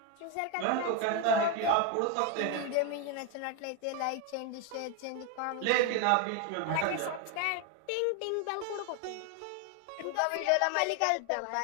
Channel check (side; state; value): both; different; correlation 0.01